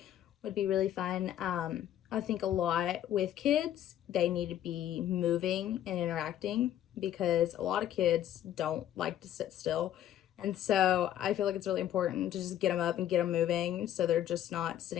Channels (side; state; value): right; quieter; 11.6 dB